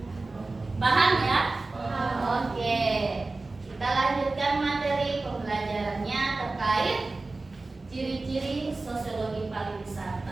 Paham ya? Oke. Kita lanjutkan materi pembelajarannya terkait ciri-ciri sosiologi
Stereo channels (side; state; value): left; quieter; 3.4 dB